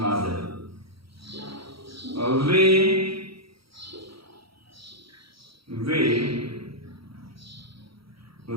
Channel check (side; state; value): left; late; 0.75 ms